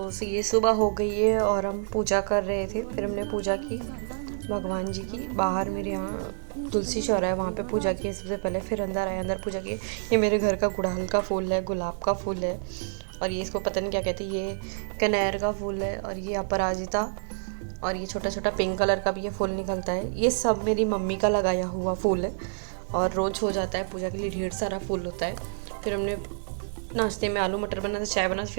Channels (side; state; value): left; silent; 59 dB below the other